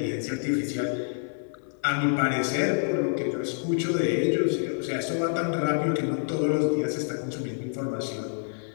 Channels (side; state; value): right; silent; 58 dB below the other